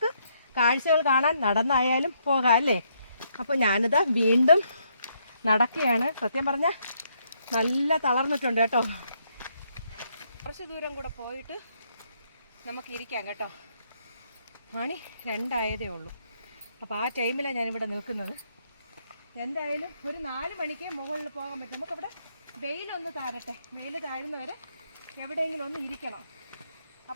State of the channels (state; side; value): inverted; both; correlation -0.73